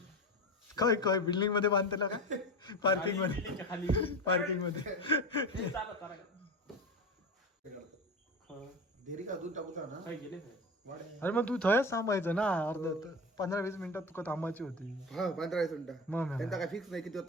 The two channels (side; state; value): both; normal; correlation 0.25